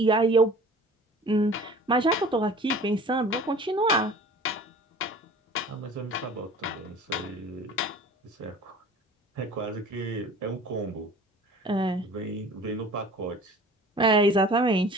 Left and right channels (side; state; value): both; normal; correlation 0.44